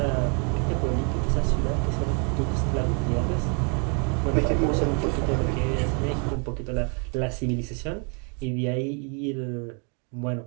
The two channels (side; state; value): left; quieter; 37.3 dB